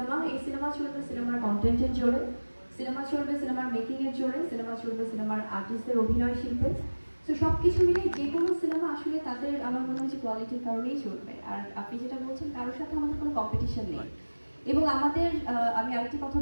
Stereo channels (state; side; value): inverted; both; correlation -1.00